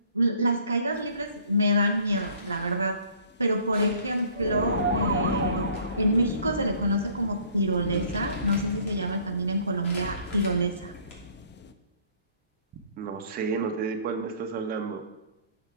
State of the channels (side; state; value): both; inverted; correlation -0.56